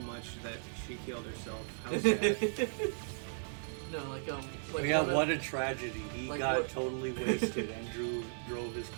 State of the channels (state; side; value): silent; left; 54 dB below the other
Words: much that she killed herself. How sad. No, like Oh, yeah, one of- what a tragedy. He like got what- totally wasted and drove his